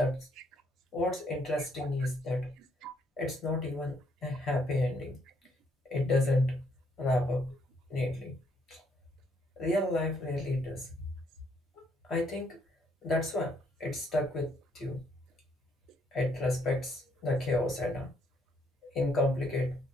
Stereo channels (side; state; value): both; normal; correlation 0.71